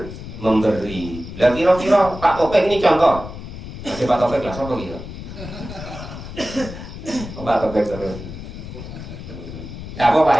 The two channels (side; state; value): left; noise; rumble, 11 dB below the sound